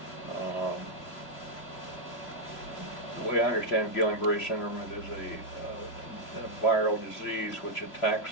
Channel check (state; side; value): late; right; 3.0 ms